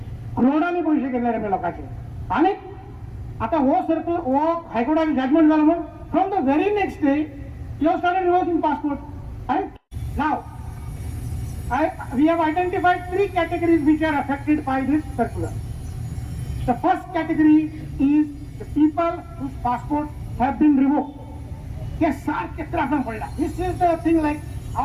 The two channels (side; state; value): both; identical; correlation 1.00